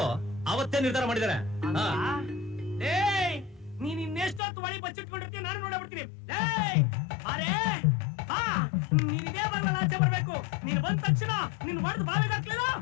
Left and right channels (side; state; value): right; drops out; at 4.4 s